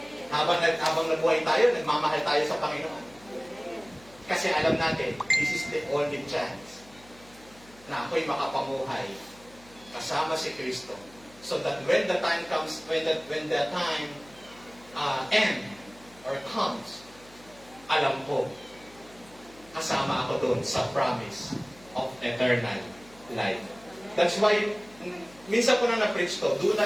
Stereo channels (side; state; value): left; noise; hum, 25 dB below the sound